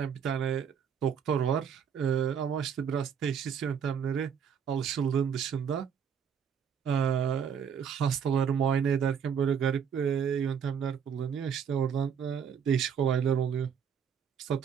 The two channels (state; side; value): quieter; left; 7.4 dB